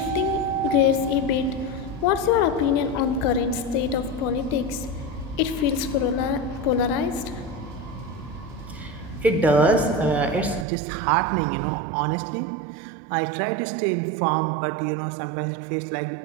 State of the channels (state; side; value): drops out; left; at 10.7 s